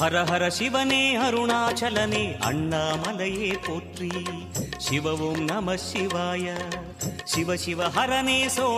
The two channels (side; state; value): both; identical; correlation 1.00